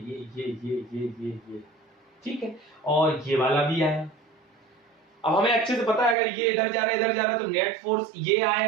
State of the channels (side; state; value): left; drops out; at 6.2 s